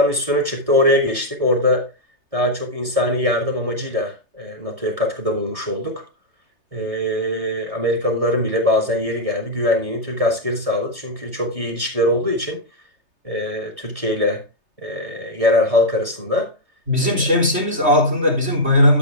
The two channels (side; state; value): left; late; 3.3 ms